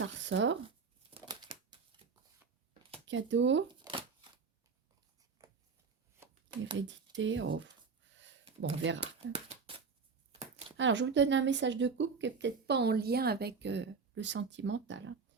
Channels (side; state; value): left; quieter; 5.2 dB